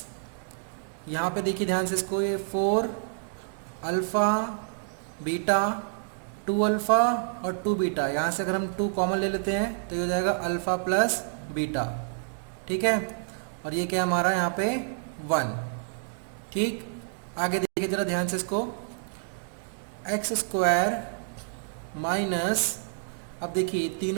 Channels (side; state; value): left; silent; digital silence